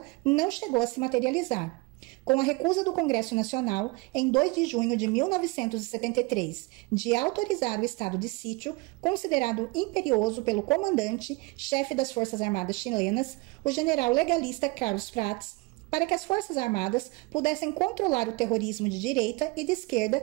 não chegou a se materializar. Com a recusa do Congresso Nacional, em 2 de junho de 1973, de autorizar o estado de sítio, considerado imperioso pelo comandante, chefe das Forças Armadas chilenas, o general legalista Carlos Prats, para que as Forças Armadas pudessem controlar o terrorismo de direita e de esquerda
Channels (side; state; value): left; quieter; 24.8 dB